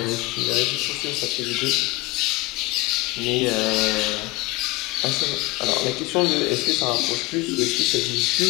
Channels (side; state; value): right; quieter; 21.8 dB